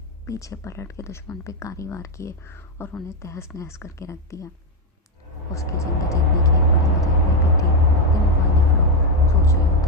پیچھے پلٹ کے دشمن پہ کاری وار کیے اور انہیں تہس نہس کر کے رکھ دیا۔ اس کی جنگ جیتنے کی ایک بڑی وجہ یہ بھی تھی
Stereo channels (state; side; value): normal; both; correlation 0.06